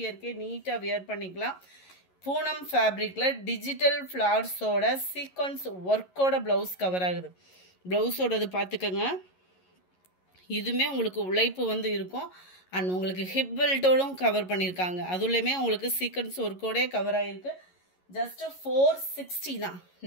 நீட்டாக வியர் பண்ணிக்கலாம். பூனம் ஃபேப்ரிக்கில் டிஜிட்டல் ஃப்ளார்ஸோட சீக்வன்ஸ் ஒர்க்கோட ப்ளவுஸ் கவர் ஆகுது. ப்ளவுஸோடது பார்த்துக்கோங்க. இதுவுமே உங்களுக்கு உழைப்பு வந்து இருக்கும். அண்ட் உங்களுக்கு ஹிப் பெல்ட்டோடும் கவர் பண்ணியிருக்காங்க. அதுலேயுமே உங்களுக்கு சீக்வன்ஸ் ஒர்க்கோடே கவர் ஆகிருக்கு. ஜஸ்ட் 460 தான்.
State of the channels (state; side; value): late; right; 11 ms